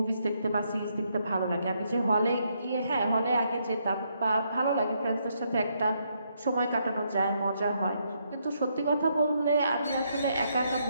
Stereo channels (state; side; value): inverted; both; correlation -0.76